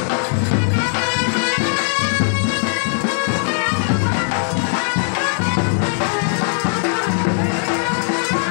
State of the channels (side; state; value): right; silent; 67 dB below the other